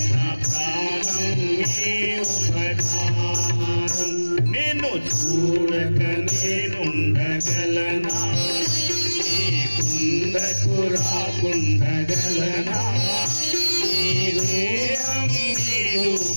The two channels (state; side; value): inverted; both; correlation -1.00